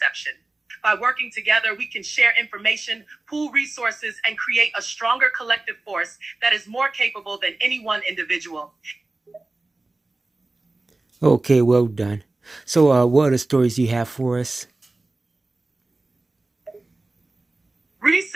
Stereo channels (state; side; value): quieter; left; 3.0 dB